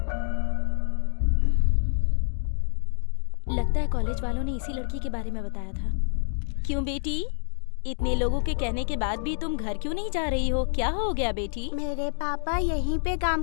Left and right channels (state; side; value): silent; right; digital silence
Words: लगता है कॉलेज वालों ने इसी लड़की के बारे में बताया था। क्यों बेटी, इतने लोगों के कहने के बाद भी तुम घर क्यों नहीं जा रही हो? क्या हो गया बेटी? मेरे पापा यहीं पे काम